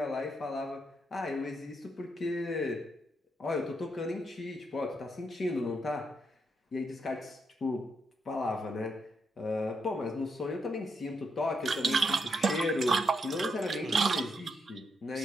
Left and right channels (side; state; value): both; normal; correlation 0.79